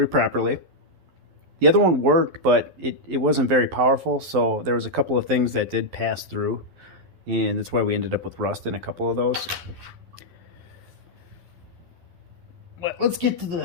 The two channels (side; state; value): left; late; 11 ms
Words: properly. The other one worked, but it wasn't very powerful, so there was a couple of things that did pass through, and that's why we ended up with rust in a couple of those. But let's get to